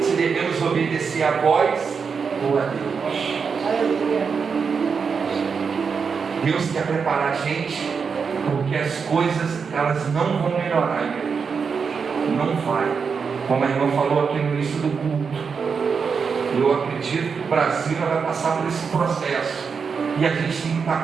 devemos obedecer a vós ou a Deus. Deus quer preparar a gente, porque as coisas elas não vão melhorar, igreja. Não vai. Como a irmã falou aqui no início do culto, eu acredito que o Brasil vai passar por esse processo, e a gente tem que estar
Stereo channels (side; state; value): left; quieter; 5.8 dB